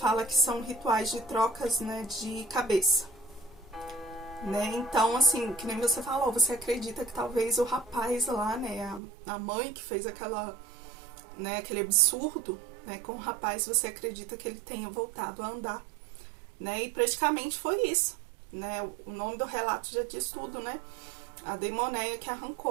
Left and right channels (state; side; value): drops out; left; at 9.0 s